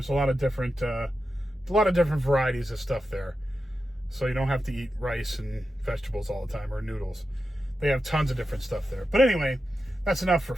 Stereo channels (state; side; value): normal; both; correlation 0.90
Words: a lot of different varieties of stuff there. So you don't have to eat rice and vegetables all the time, or noodles. They have tons of different stuff there. But anyway, that's enough for